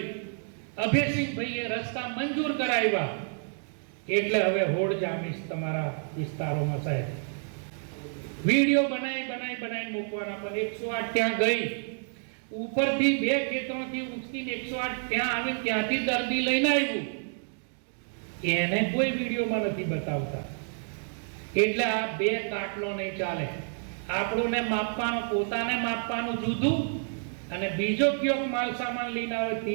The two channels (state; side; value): silent; left; 56 dB below the other